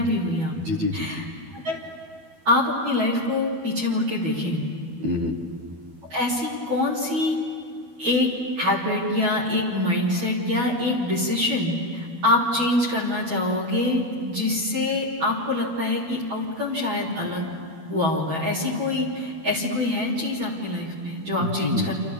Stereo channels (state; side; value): late; left; 12 ms